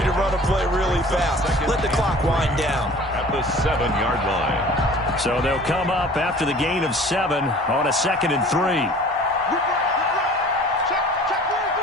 to run a play really fast. Let the clock wind down. At the 7-yard line. So they'll come up after the gain of 7 on a 2nd and 3.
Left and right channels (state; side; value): normal; both; correlation 0.46